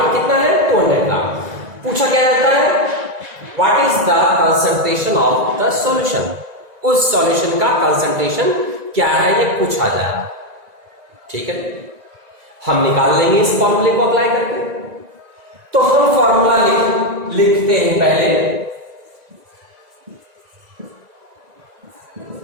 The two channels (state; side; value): late; left; 1.9 ms